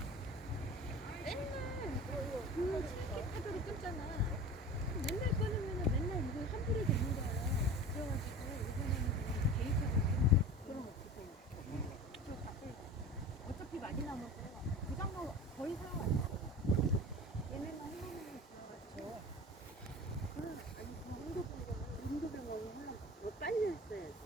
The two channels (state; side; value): normal; both; correlation 0.36